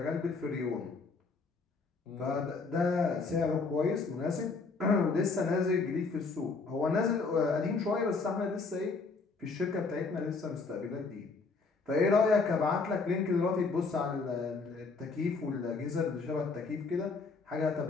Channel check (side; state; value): right; quieter; 4.2 dB